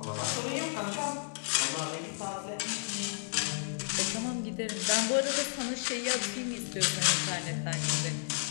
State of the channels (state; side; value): silent; right; digital silence